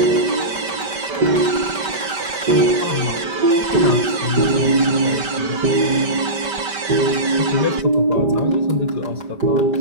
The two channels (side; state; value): left; late; 5.2 ms